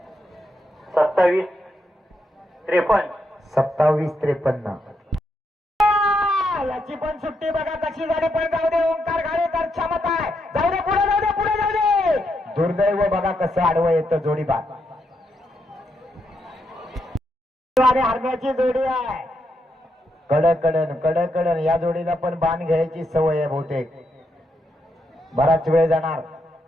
27-53. याची पण सुट्टी बघा कशी झाली पण जाऊ दे. ओंकार घाणेकर क्षमता आहे. जाऊ दे पुढे जाऊ दे. दुर्दैव बघा कसं आडवं येतं. जोडी बाद. हरण्याची जोडी आहे. कडकडन या जोडीला पण बाण घ्यायची सवय आहे बहुतेक. बराच वेळ जाणार.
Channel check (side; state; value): both; normal; correlation 0.80